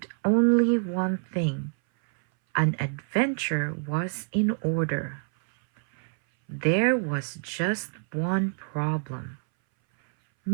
only one thing: an adventure was in order. There was just one problem.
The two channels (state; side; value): silent; left; 60 dB below the other